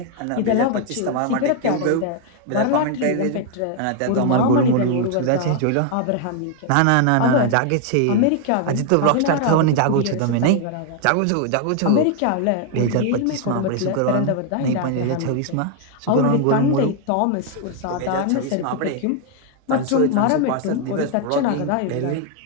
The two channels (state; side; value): different; both; correlation 0.00